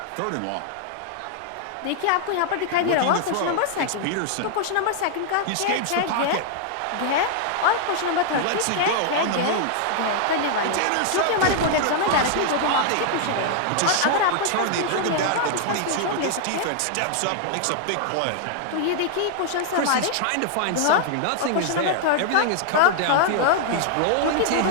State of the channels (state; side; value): different; both; correlation 0.00